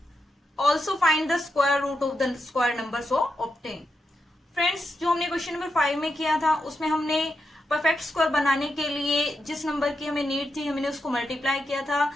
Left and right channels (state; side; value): normal; both; correlation 0.85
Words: Also find the square root of the square number so obtain. Friends, जो हमने question number 5 में किया था उसमें हमने perfect square बनाने के लिए जिस नंबर की हमें नीड थी हमने उसको मल्टीप्लाई किया था.